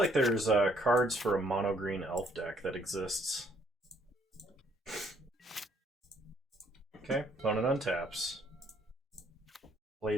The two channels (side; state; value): both; normal; correlation 0.65